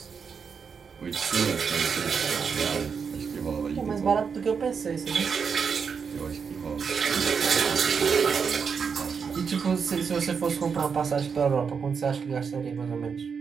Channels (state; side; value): quieter; left; 6.1 dB